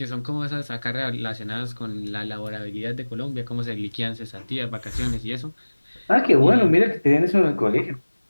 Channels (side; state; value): both; inverted; correlation -1.00